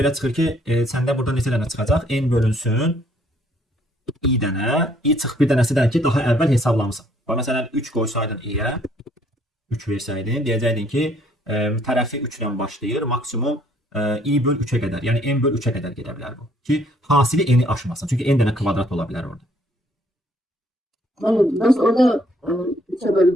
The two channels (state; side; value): normal; both; correlation 0.64